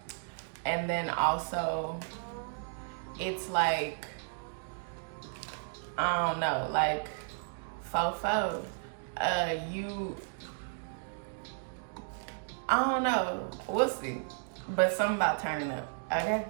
And then also, it's like, I don't know, like, fofo. I don't know, we'll see. But something about turning up, okay?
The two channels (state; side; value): silent; left; digital silence